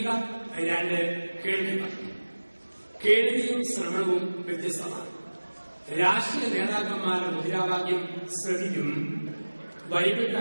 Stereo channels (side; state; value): both; inverted; correlation -1.00